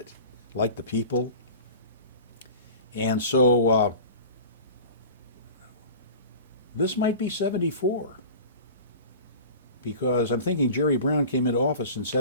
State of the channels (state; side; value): inverted; both; correlation -0.38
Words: liked the people. And so this might be 74, because I'm thinking Jerry Brown came into office in